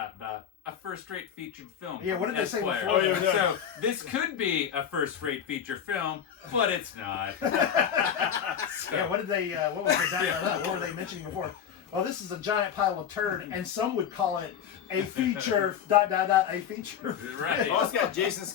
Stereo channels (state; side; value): quieter; right; 8.5 dB